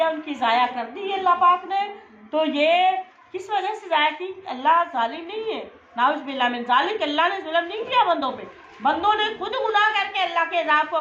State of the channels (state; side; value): identical; both; correlation 1.00